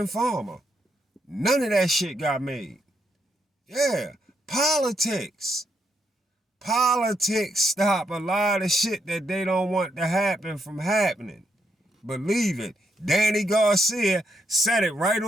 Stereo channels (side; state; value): both; normal; correlation 0.78